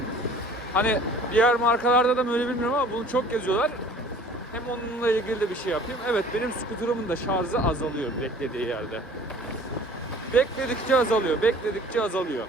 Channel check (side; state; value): both; normal; correlation 0.49